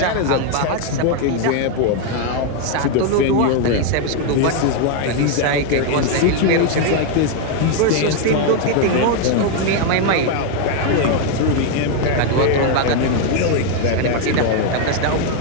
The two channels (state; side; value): different; both; correlation 0.01